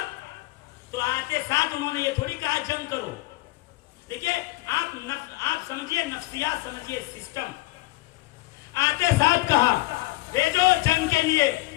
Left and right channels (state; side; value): quieter; right; 20.7 dB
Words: تو آتے ساتھ انہوں نے یہ تھوڑی کہا جنگ کرو. دیکھیے آپ سمجھیے نفسیات, سمجھیے سسٹم. آتے ساتھ کہا بھیجو جنگ کے لیے,